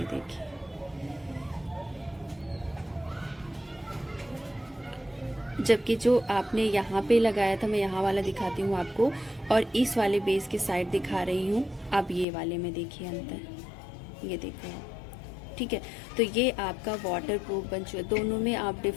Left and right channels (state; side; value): drops out; right; at 12.2 s